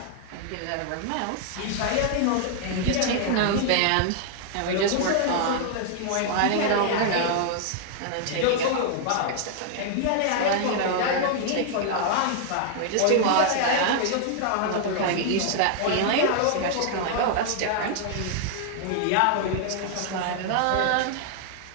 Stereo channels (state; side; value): different; both; correlation 0.00